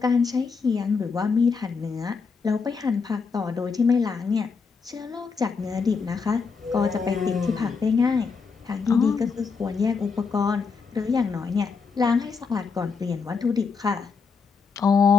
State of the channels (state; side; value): quieter; right; 5.1 dB